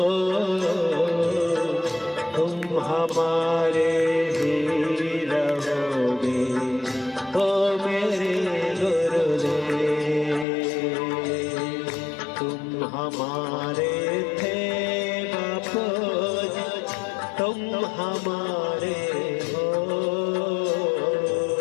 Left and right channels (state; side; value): drops out; right; at 10.5 s